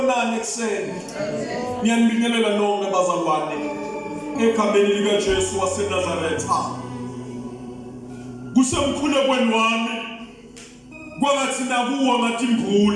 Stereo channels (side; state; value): both; identical; correlation 1.00